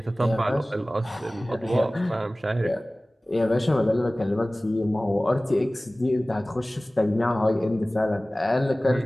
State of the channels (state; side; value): normal; both; correlation 0.98